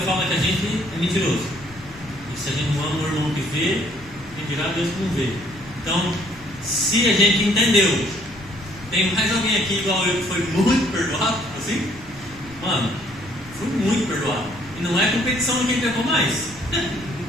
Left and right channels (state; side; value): noise; left; rumble, 21 dB below the sound